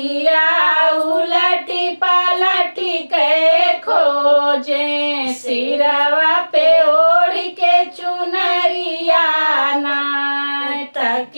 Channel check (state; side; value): inverted; both; correlation -1.00